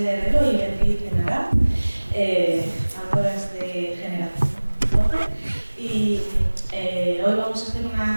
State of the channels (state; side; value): inverted; both; correlation -1.00